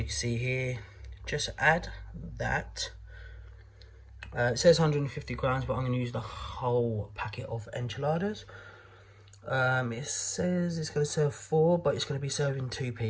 can see here. Just add that. It says 150 grams, but I'm going to use the whole packet of enchiladas. It says it's going to serve 4, but it's going to be serving 2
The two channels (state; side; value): identical; both; correlation 1.00